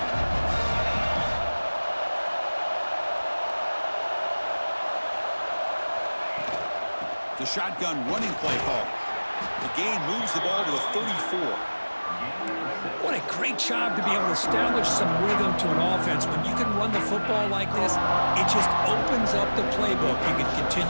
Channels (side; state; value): both; inverted; correlation -1.00